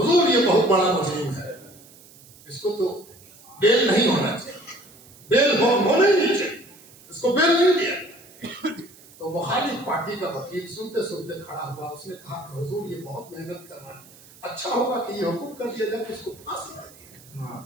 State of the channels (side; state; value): right; noise; hiss, 23 dB below the sound